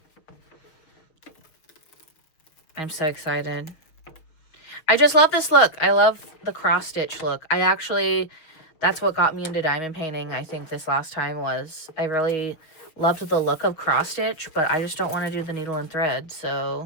I'm so excited. I just love this look. I love the cross stitch look. That's what got me into diamond painting. I think this last time was, I really loved the look of cross stitch, but I just don't want to do the needle and thread.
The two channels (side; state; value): right; late; 6.6 ms